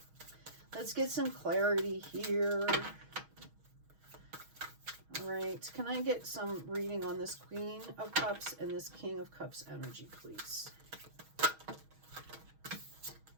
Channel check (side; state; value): left; late; 6.3 ms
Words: Let's get some clarity here. All right, can I get some reading on this Queen of Cups and this King of Cups energy, please?